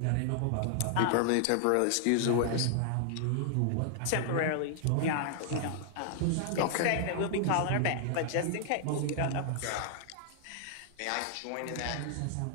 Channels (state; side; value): different; both; correlation 0.00